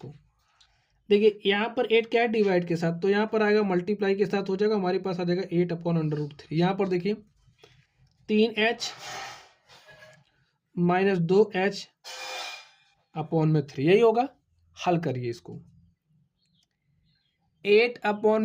देखिए यहाँ पर 8 क्या है, डिवाइड के साथ, तो यहाँ पर आएगा मल्टीप्लाई के साथ हो जाएगा, हमारे पास आ जाएगा 8 अपॉन √3। यहाँ पर देखिए 3h माइनस 2h अपॉन में 3, यही होगा। हल करिए इसको। 8 अपॉन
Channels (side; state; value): both; identical; correlation 1.00